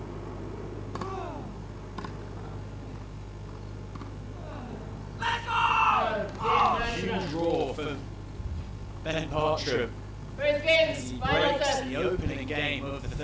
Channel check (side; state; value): both; identical; correlation 1.00